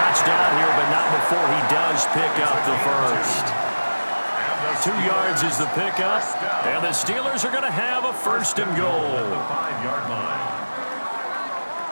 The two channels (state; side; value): inverted; both; correlation -1.00